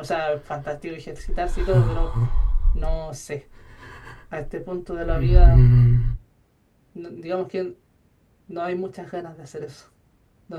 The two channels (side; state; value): both; identical; correlation 1.00